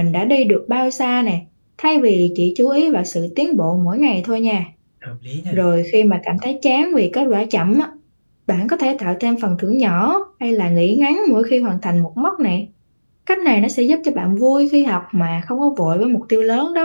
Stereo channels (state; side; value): inverted; both; correlation -1.00